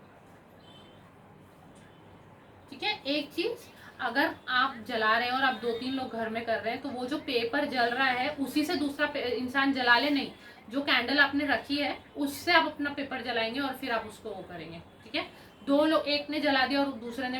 ठीक है, एक चीज, अगर आप जला रहे हैं और आप 2-3 लोग घर में कर रहे हैं, तो वो जो पेपर जल रहा है उसी से दूसरा इंसान जला ले नहीं। जो कैंडल आपने रखी है उससे आप अपना पेपर जलाएंगे और फिर आप उसको वो करेंगे। ठीक है, 2 लोग, एक ने जला दिया और दूसरे ने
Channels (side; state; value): both; identical; correlation 1.00